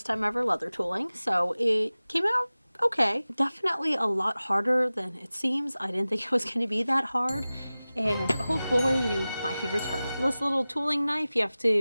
time ever leather tooling. So it came out okay. Definitely a lot harder than it seems. I didn't think it was going to be that hard. And oh boy, my fingers hurt. This little tooling knife, you have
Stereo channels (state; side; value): inverted; both; correlation -0.97